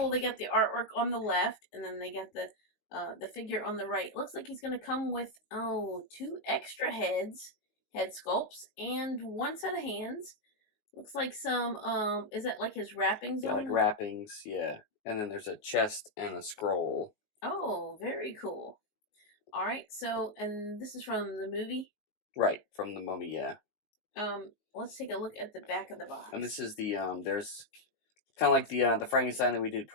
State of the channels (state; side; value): late; right; 19 ms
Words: They got the artwork on the left, and then they got the figure on the right. Looks like he's going to come with, two extra head sculpts, and one set of hands. Looks like some, is that like his wrappings Yeah, on like them? wrappings, yeah. And then there's a chest and a scroll. Oh, very cool. All right, so, and this is from the movie. Right, from the Mummy, yeah. Let's take a look at the back of the box. And this is the, there's kind of like the Frankenstein that we did